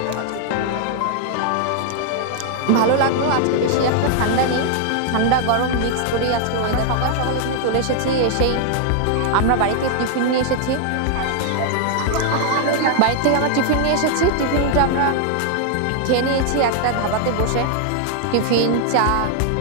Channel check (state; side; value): different; both; correlation 0.00